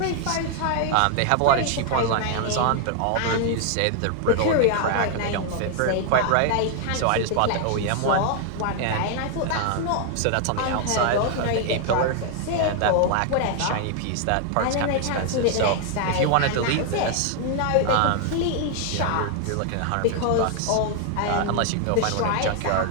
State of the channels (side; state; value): both; different; correlation 0.00